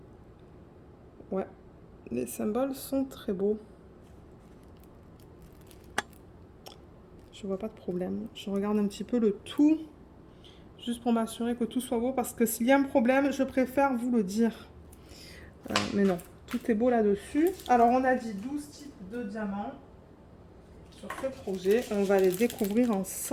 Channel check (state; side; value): identical; both; correlation 1.00